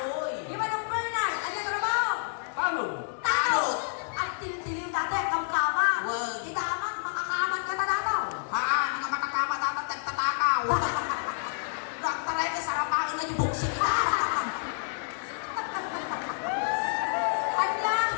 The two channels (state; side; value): silent; right; 59 dB below the other